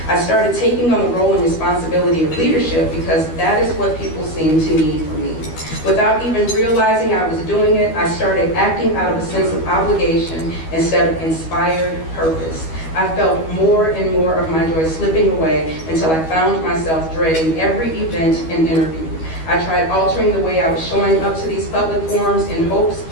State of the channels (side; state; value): right; late; 12 ms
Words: I started taking on the role and responsibility of leadership because that is what people seemed to need from me. Without even realizing I was doing it, I started acting out of a sense of obligation instead of inspired purpose. I felt more and more of my joy slipping away until I found myself dreading every event and interview. I tried altering the way I was showing up to these public forums in hopes